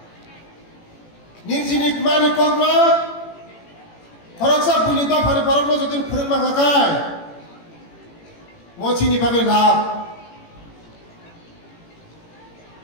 ninjinik mani kokno. Koroksa buni do phani porokno jodin phurung makakai. Mochini bagai lab.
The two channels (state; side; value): late; right; 18 ms